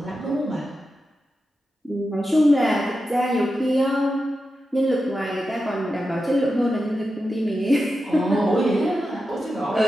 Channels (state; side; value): normal; both; correlation 0.90